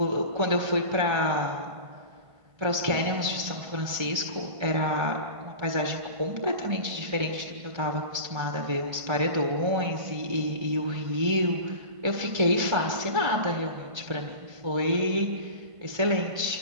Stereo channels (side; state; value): left; late; 1.3 ms